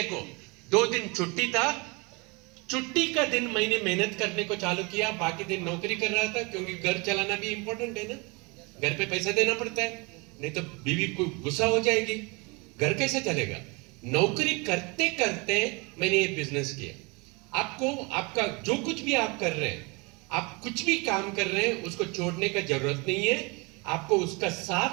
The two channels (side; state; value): left; quieter; 28.3 dB